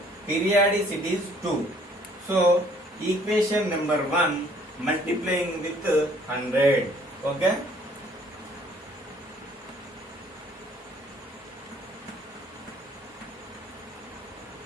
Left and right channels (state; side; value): normal; both; correlation 0.59